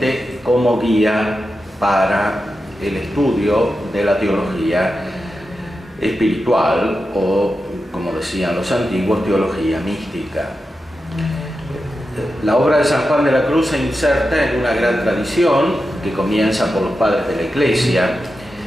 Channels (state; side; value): normal; both; correlation 0.90